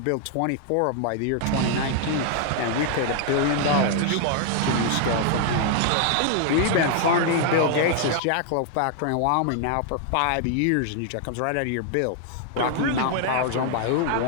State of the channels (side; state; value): both; different; correlation 0.00